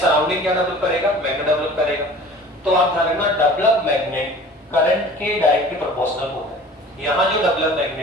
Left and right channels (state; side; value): normal; both; correlation 0.44